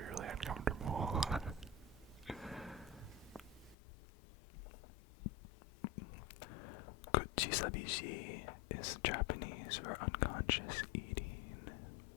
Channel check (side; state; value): right; drops out; at 3.8 s